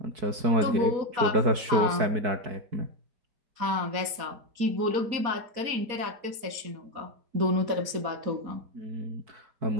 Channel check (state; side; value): late; left; 4.2 ms